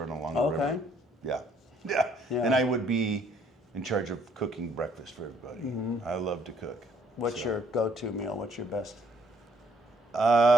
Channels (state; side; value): normal; both; correlation 0.65